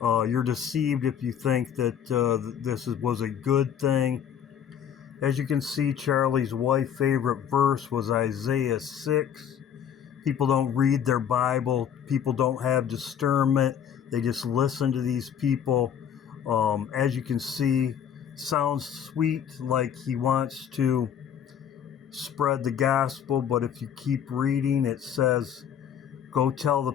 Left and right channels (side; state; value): right; quieter; 8.8 dB